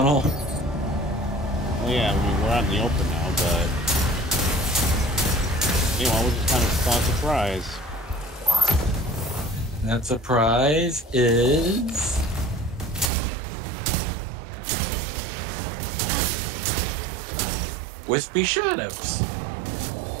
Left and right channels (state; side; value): drops out; left; at 13.1 s